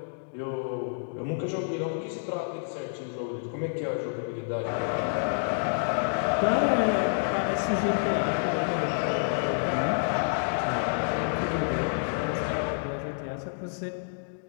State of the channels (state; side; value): silent; right; digital silence